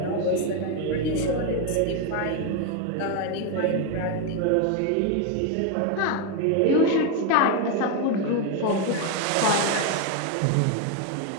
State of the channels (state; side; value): different; both; correlation 0.02